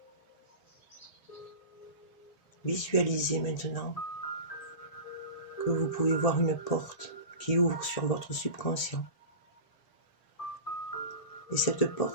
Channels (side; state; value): right; late; 1.7 ms